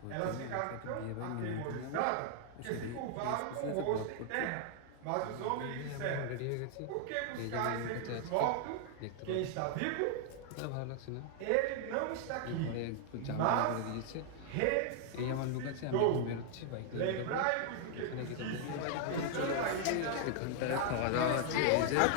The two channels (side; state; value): both; different; correlation 0.00